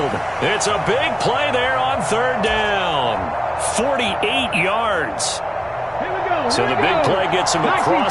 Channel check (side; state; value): both; identical; correlation 1.00